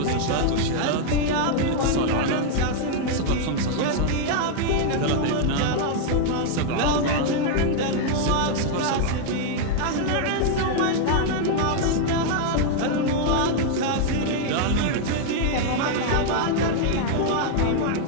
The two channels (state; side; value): different; both; correlation 0.00